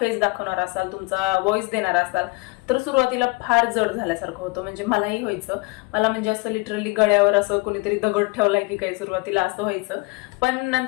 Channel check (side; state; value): right; quieter; 25.7 dB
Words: दाखवणार असाल, तुमचा व्हॉइस देणार असाल, तर सुरुवातीला फार जड झाल्यासारखं होतं. म्हणजे मलाही व्हायचं. मला म्हणजे असं लिटरली गळ्यावर असं कोणीतरी दगड ठेवलाय की काही, सुरुवातीला असं व्हायचं. पण